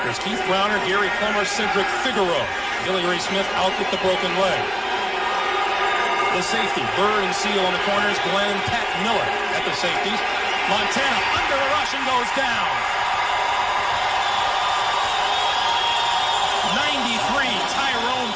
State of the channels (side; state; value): both; identical; correlation 1.00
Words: Keith Browner, Gary Plummer, Cedric Figueroa. Billy Ray Smith out with the broken leg. The safety, Bird and Seal on the corners, Glenn and Pat Miller at the safeties. Montana under the rush and goes down. 93, Tyrone